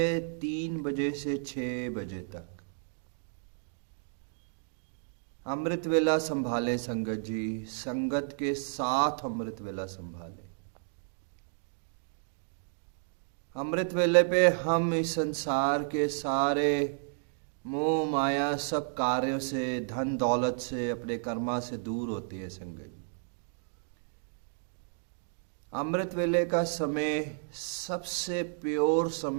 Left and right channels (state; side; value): silent; left; digital silence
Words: 3 बजे से 6 बजे तक। अमृत वेला संभाले संगत जी, संगत के साथ अमृत वेला संभाले। अमृत वेले पे हम इस संसार के सारे मोह माया सब कार्यों से, धन दौलत से, अपने कर्मा से दूर होती है संगत। अमृत वेले का समय सबसे प्योर